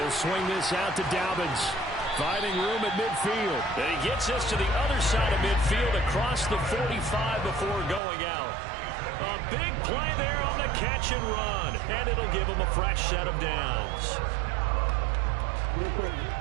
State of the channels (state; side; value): drops out; left; at 8.0 s